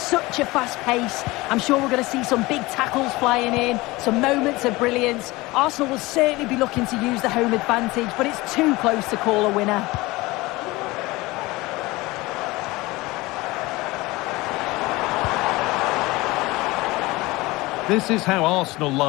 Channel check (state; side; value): quieter; right; 21.2 dB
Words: a fast pace. I'm sure we're going to see some big tackles flying in, some moments of brilliance. Arsenal will certainly be looking to use the home advantage, but it's too close to call a winner. This is how Arsenal